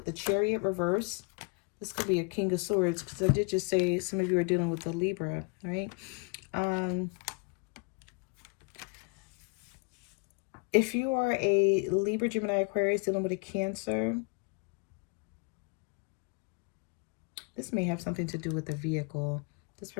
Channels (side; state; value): right; quieter; 32.5 dB